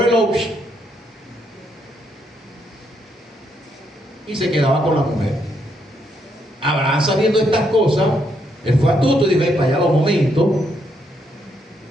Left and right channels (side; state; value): both; normal; correlation 0.76